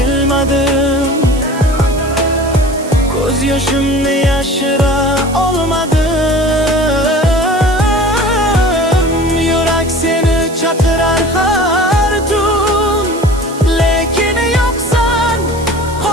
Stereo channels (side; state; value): right; noise; hiss, 17 dB below the sound